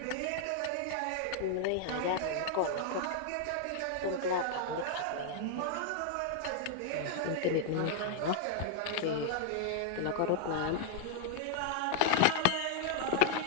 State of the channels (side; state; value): both; different; correlation 0.00